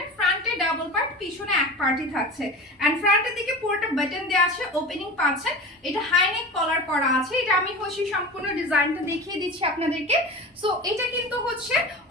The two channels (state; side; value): normal; both; correlation 0.32